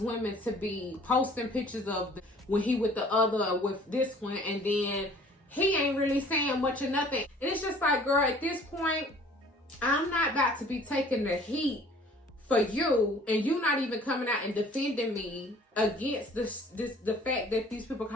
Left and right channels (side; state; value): both; normal; correlation 0.52